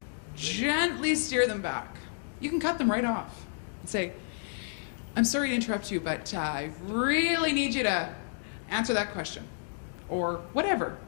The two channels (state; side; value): silent; right; digital silence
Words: gently steer them back. You can cut them right off and say, I'm sorry to interrupt you, but I really need you to answer that question, or whatever,